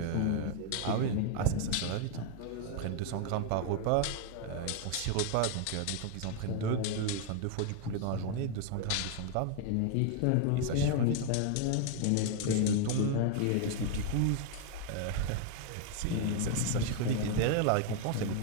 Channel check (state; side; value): different; both; correlation 0.00